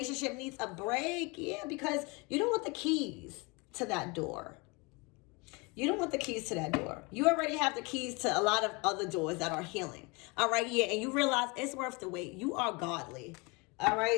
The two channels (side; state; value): right; quieter; 28.3 dB